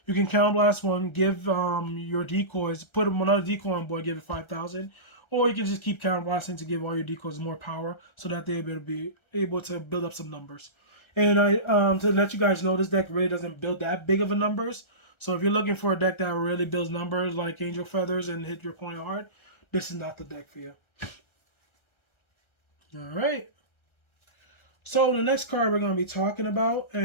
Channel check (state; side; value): late; right; 1.3 ms